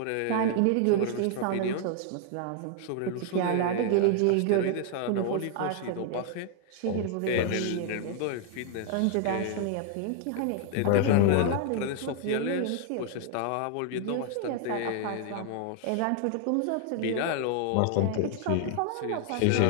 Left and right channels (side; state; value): both; different; correlation 0.00